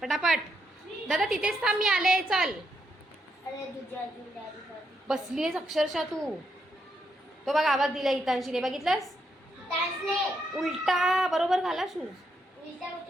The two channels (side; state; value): both; normal; correlation 0.79